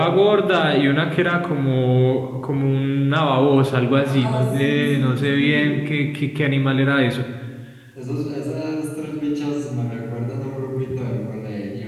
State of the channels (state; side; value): identical; both; correlation 1.00